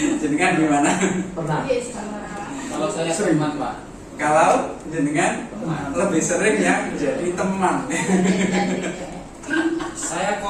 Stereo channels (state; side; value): identical; both; correlation 1.00